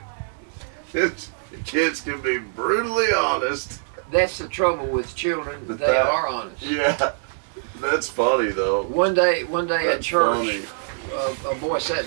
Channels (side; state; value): left; silent; digital silence